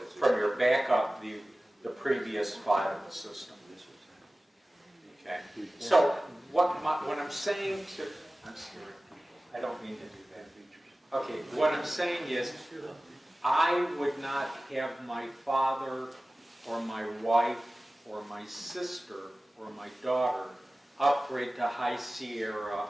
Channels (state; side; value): normal; both; correlation 0.97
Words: from your backup the previous file in the system. Okay. So what I'm saying to, I'm sorry, I don't mean to do that. Okay. What I'm saying is, I would not have my father or my wife or my sister or my daughter upgrade to High Sierra